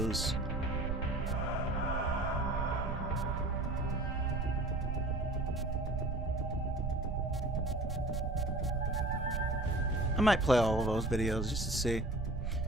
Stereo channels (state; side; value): noise; right; rumble, 2 dB below the sound